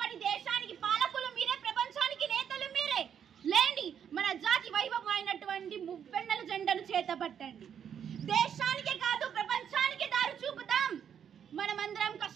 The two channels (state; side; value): quieter; left; 8.4 dB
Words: దేశానికి పాలకులు మీరే, ప్రపంచానికి నేతలు మీరే. లేండి, మన జాతి వైభవం అయినటువంటి మువ్వెన్నెల జెండాను చేతపట్టండి. దేశానికే కాదు ప్రపంచానికి దారి చూపుతాం. మనమందరం